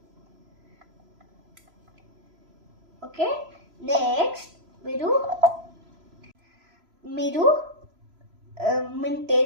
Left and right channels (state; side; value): late; left; 3.0 ms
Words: ఓకే, నెక్స్ట్ మీరు మింట్